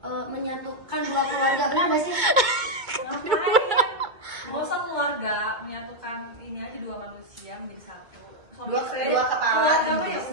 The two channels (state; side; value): late; left; 2.2 ms